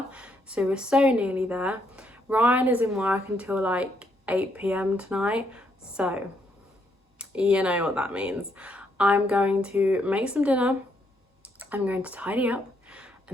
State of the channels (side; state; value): both; normal; correlation 0.74